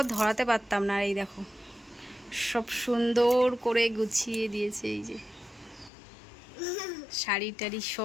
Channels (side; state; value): right; drops out; at 5.9 s